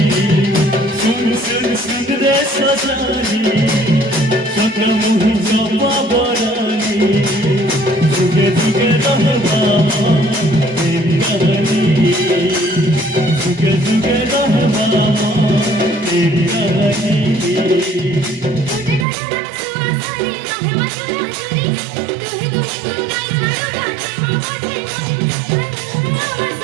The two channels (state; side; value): drops out; left; at 19.1 s